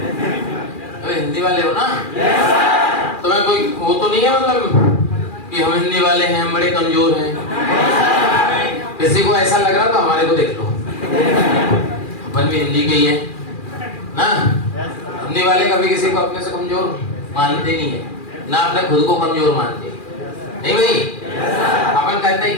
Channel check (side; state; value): right; late; 2.4 ms